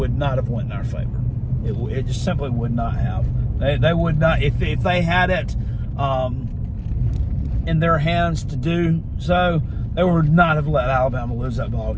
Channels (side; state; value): both; identical; correlation 1.00